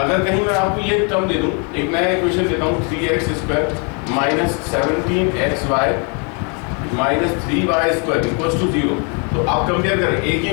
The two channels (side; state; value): right; quieter; 36.1 dB